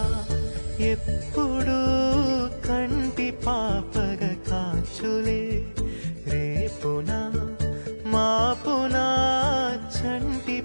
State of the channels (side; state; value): both; inverted; correlation -1.00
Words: ఎప్పుడు కంటి పాపగ కాచులే రేపునా మాపునా చంటి